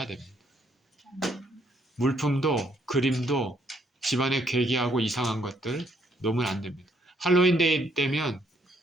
됩니다. 물품도 그림도 집안에 괴기하고 이상한 것들 놓으면 안 됩니다. 할로윈 데이 때면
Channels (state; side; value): normal; both; correlation 0.70